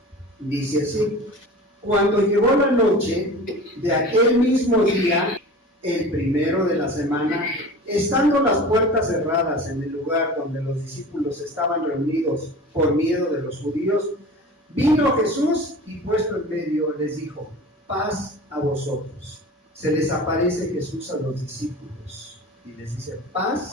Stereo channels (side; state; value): both; normal; correlation 0.37